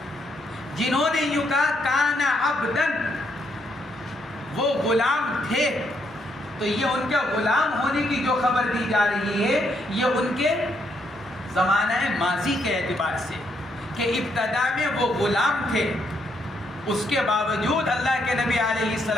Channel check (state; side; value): normal; both; correlation 0.75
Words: جنہوں نے یوں کہا کانا عبدن، وہ غلام تھے، تو یہ ان کے غلام ہونے کی جو خبر دی جا رہی ہے یہ ان کے زمانہ ماضی کے اعتبار سے کہ ابتدا میں وہ غلام تھے، اس کے باوجود اللہ کے نبی علیہ